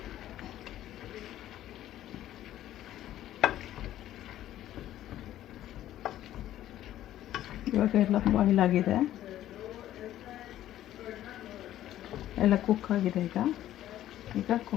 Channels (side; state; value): right; quieter; 12.9 dB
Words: ಇವಾಗ ಎಲ್ಲ boil ಆಗಿದೆ, ಎಲ್ಲ cook ಆಗಿದೆ. ಈಗ